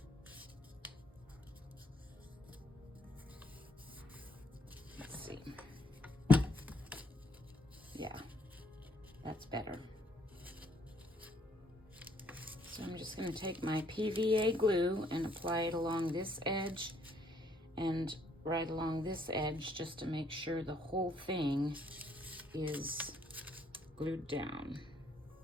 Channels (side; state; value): both; normal; correlation 0.67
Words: Yeah, that's better. So I'm just going to take my PVA glue and apply it along this edge and right along this edge, just to make sure the whole thing is glued down.